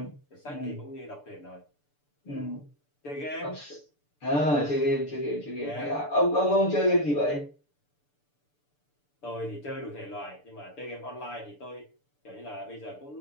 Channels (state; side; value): late; right; 6.8 ms